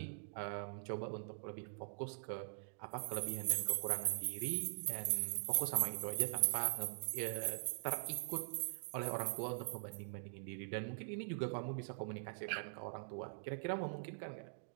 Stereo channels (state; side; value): silent; left; digital silence